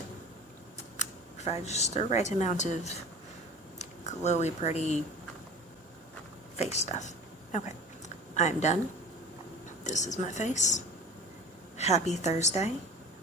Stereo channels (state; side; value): normal; both; correlation 0.39